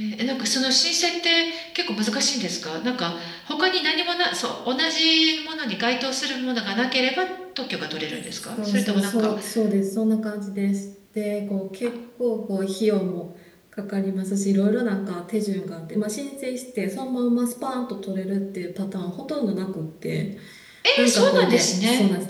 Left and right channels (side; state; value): both; identical; correlation 1.00